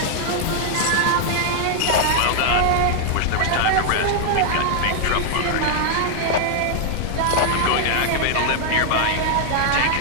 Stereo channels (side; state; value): both; different; correlation 0.00